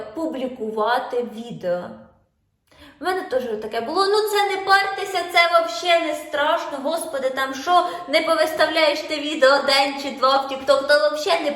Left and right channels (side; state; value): both; identical; correlation 1.00